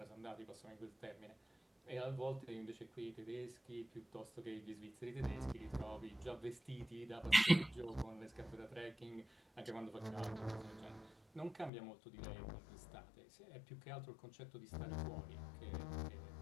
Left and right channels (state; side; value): drops out; right; at 11.7 s